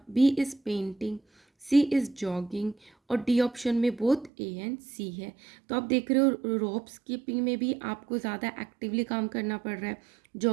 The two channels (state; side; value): drops out; left; at 4.3 s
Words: B is painting, C is jogging, और डी ऑप्शन में बोथ ए एंड सी है। तो आप देख रहे हो रॉप स्किपिंग में भी आपको ज़्यादा एक्टिवली काम करना पड़ रहा है,